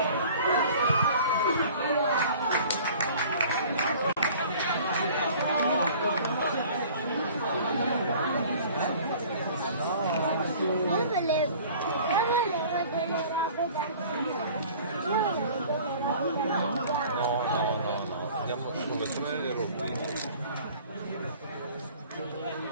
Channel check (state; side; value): inverted; both; correlation -0.48